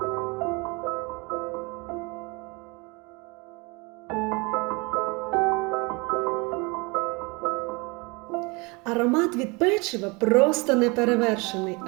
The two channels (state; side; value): quieter; left; 27.6 dB